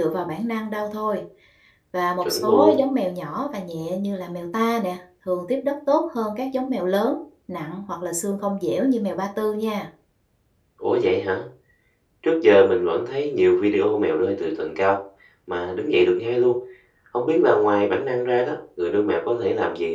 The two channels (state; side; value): identical; both; correlation 1.00